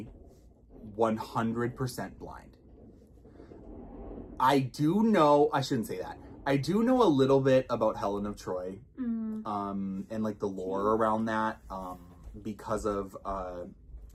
100% blind. I shouldn't say that. I do know a little bit about Helen of Troy, and like the lore around that,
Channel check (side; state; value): both; identical; correlation 1.00